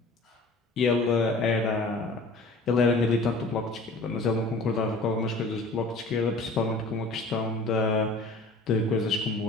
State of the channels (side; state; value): right; quieter; 3.1 dB